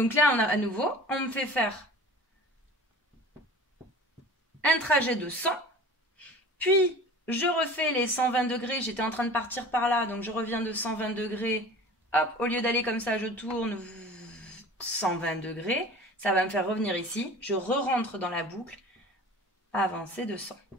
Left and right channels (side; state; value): both; normal; correlation 0.41